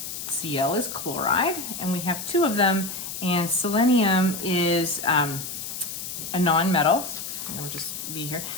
Cl is chloride, and we have 2 of them, and selenium is a non-metal. I'm gonna just be here.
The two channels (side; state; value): left; noise; hiss, 7 dB below the sound